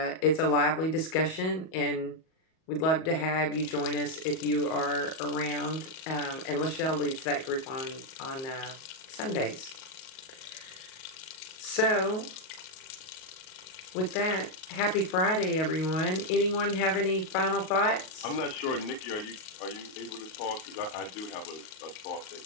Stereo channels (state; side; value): late; right; 38 ms